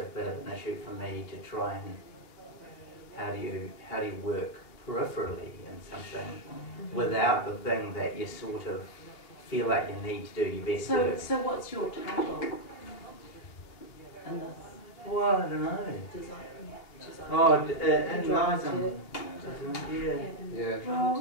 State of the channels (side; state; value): right; late; 2.9 ms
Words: bit of an issue for me to try and. How do you work peripherally in something without the thing that you sort of feel like you need to do your best work? So what's your title in this? Well, I don't know. Design. Oh, it lies on Yeah. Yeah.